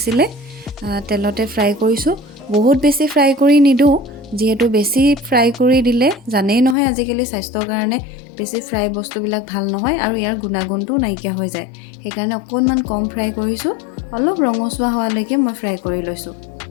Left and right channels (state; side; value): drops out; right; at 6.8 s